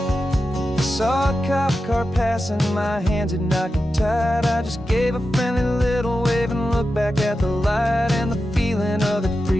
I saw a cop car passing, my hands had not got tied. I just gave a friendly little wave and looked back at the light. And the feeling of that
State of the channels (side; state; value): both; normal; correlation 0.91